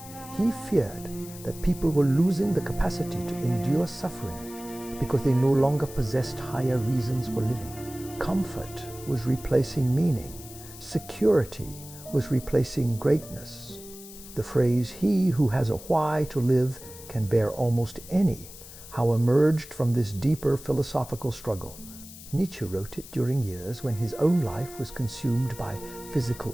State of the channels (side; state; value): left; noise; hiss, 16 dB below the sound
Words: He feared that people were losing the capacity to endure suffering because they no longer possessed higher reasons for living. Comfort was replacing meaning. Security was replacing greatness. The phrase, "He who has a why to live can bear almost any," how emerged from this deeper philosophical struggle. Nietzsche wrote it during years when his own life was consumed by